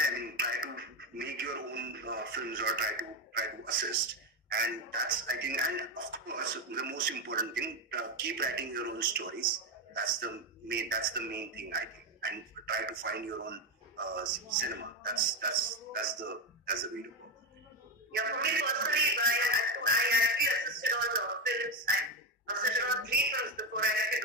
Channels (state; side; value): normal; both; correlation 0.12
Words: try to make your own films or try to assist. And that's, I think, and of course, the most important thing, keep writing your own stories. That's the main thing, I think, and try to find your own cinema. That's the way to go. Yeah, for me personally, I actually assisted on films. I assisted on 3 films before I